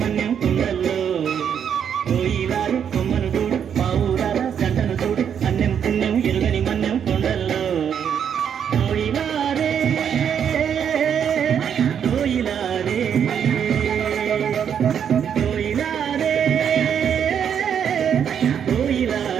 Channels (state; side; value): quieter; left; 8.2 dB